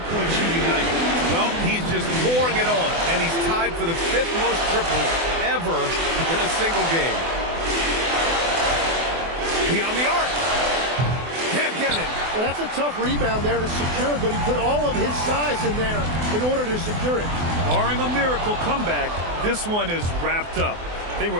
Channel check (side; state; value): left; late; 24 ms